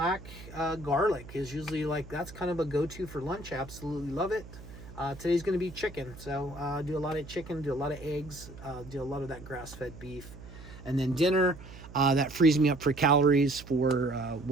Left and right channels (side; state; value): right; noise; hum, 16 dB below the sound